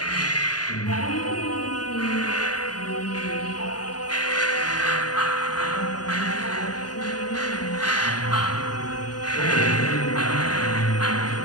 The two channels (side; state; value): right; late; 0.69 ms